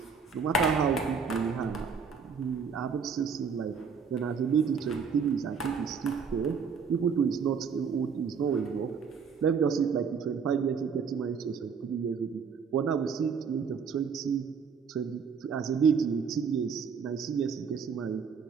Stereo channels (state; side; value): quieter; left; 6.1 dB